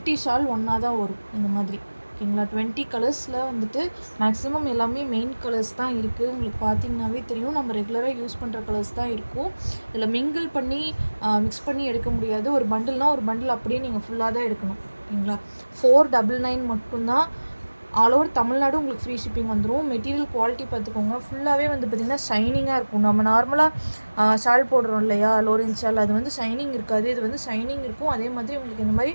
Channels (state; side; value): inverted; both; correlation -1.00